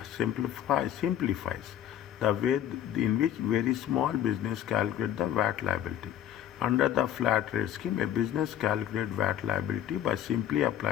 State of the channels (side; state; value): right; quieter; 10.8 dB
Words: simplifies the way in which very small business calculate the VAT liability. Under the flat rate scheme, a business calculates VAT liability by simply